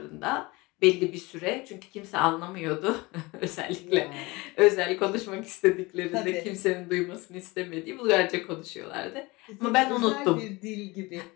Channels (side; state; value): right; quieter; 23.4 dB